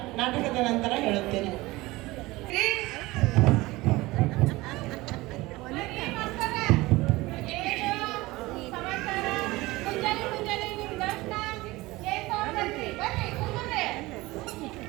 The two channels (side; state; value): left; quieter; 20.3 dB